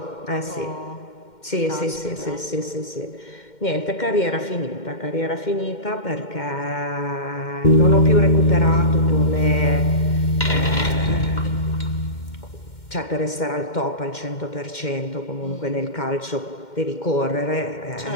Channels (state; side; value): late; right; 2.1 ms